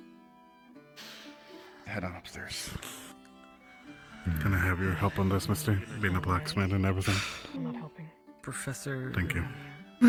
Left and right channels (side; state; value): both; identical; correlation 1.00